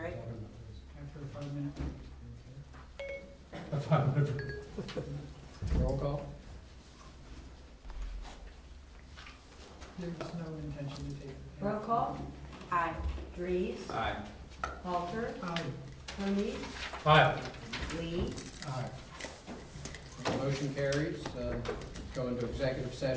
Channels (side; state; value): both; identical; correlation 1.00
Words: After a 5-minute. A 5-minute. Roll call? There's no intention to take. Roll call? Aye. Dries, Aye. Halter, Aye. Hermes, Aye. Lee, Aye. Motion carries. Go into executive